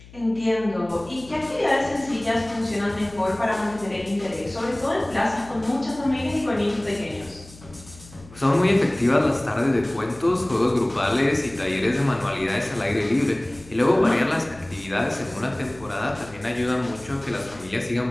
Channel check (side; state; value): left; noise; hum, 20 dB below the sound